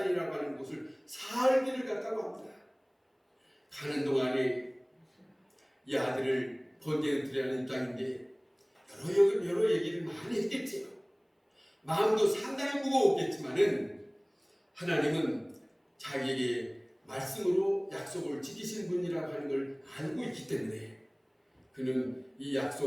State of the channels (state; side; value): identical; both; correlation 1.00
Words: 하는 곳을 살기를 갔다고 합니다. 가는 동안에 이 아들을 번제로 드리라는 입장인데 여러 얘기를 많이 했겠지요. 마음도 상당히 무거웠겠지만은 하나님은 자기에게 말씀으로 약속을 지키신 분이라고 하는 걸 알고 있기 때문에 그는 이